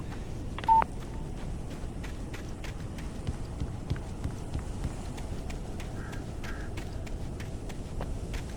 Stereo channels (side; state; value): both; identical; correlation 1.00